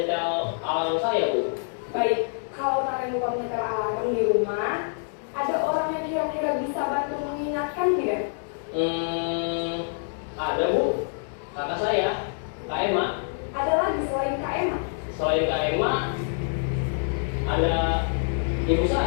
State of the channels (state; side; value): silent; right; digital silence